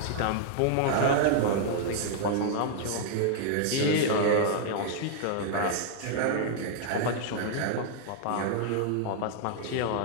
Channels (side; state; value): both; different; correlation -0.01